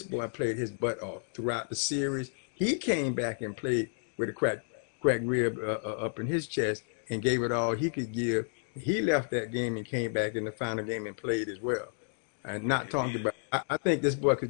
Yeah, boy played his butt off throughout the series. He came back and played with a crack rib up in his chest and gave it all he could give. He left that game and came back in the final game and played as well. And yeah, not talking about, I think this boy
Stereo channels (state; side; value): silent; right; digital silence